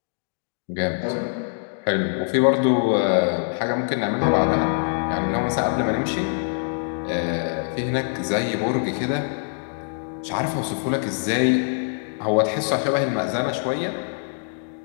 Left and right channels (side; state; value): right; silent; digital silence